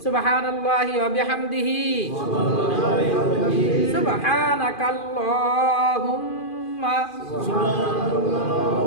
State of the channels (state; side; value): late; right; 2.5 ms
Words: সুবহানাল্লাহি ওয়া বিহামদিহি, সুবহানাকাল্লাহুম্মা